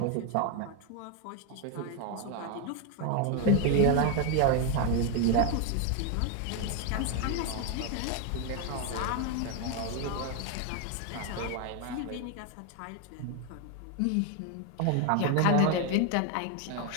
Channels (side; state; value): both; different; correlation 0.01